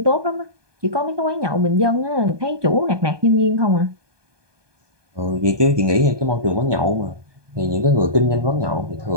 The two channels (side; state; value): left; late; 1.2 ms